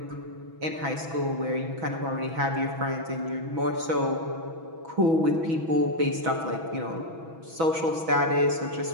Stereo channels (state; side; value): late; left; 6.1 ms